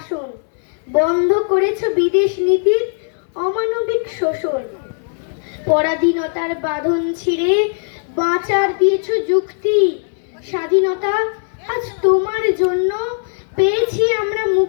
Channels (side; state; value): right; silent; 67 dB below the other